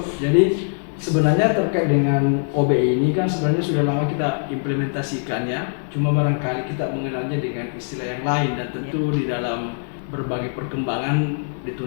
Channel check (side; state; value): right; silent; digital silence